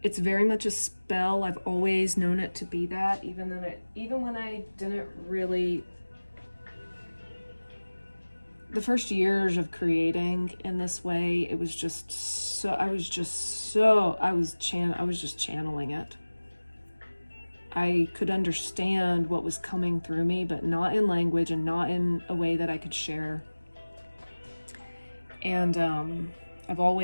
it's very much a spell. I've always known it to be that, even when I didn't really. The first years of creating in this way, it was just so, I was just channeling it. I could understand what was coming through me, but not in language and not in a way that I could share. And I've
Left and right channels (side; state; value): both; inverted; correlation -1.00